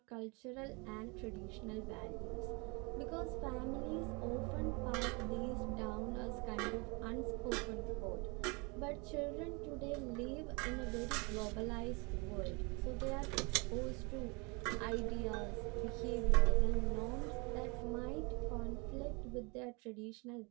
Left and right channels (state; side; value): quieter; left; 29.7 dB